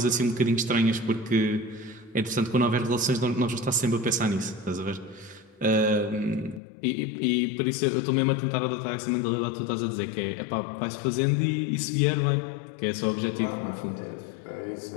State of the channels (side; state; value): right; drops out; at 6.6 s